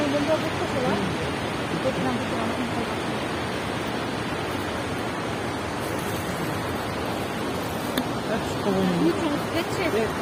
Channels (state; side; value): identical; both; correlation 1.00